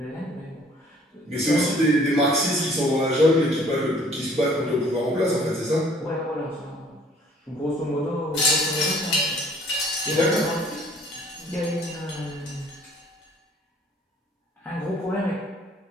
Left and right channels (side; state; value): both; normal; correlation 0.57